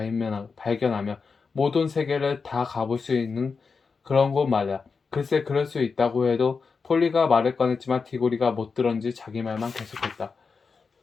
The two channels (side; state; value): right; quieter; 5.0 dB